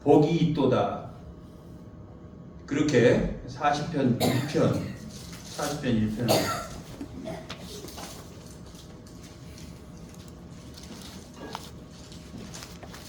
복이 있도다. 그렇게 40편 1편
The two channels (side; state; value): both; identical; correlation 1.00